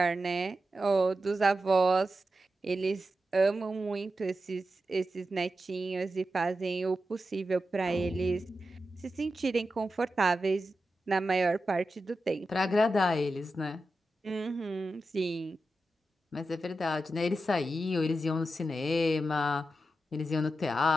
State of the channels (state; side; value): normal; both; correlation 0.90